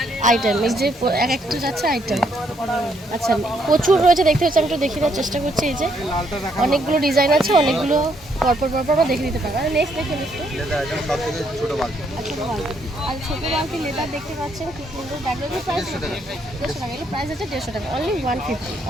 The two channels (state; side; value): normal; both; correlation 0.72